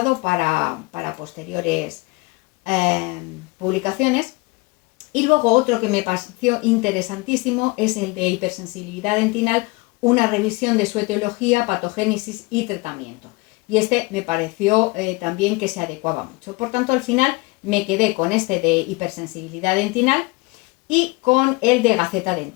para posteriores publicaciones. Y luego otro que me pareció interesantísimo es el de hipersensibilidad dentinal, una revisión de su etiología, patogénesis y tratamiento. Y me pareció también que se adecuaba mucho. Por tanto, al final me quedé con de hipersensibilidad dentinal y con el de Gaceta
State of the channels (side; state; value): right; quieter; 25.2 dB